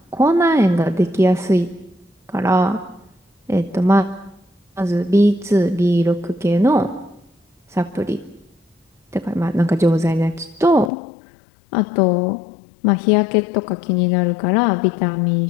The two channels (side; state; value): right; drops out; at 10.9 s